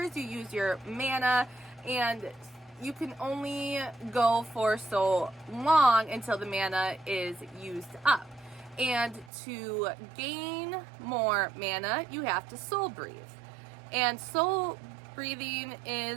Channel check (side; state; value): left; drops out; at 9.3 s